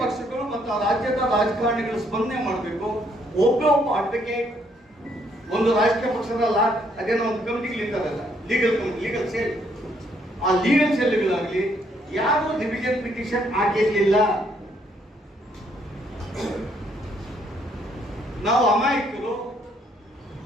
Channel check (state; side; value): normal; both; correlation 0.70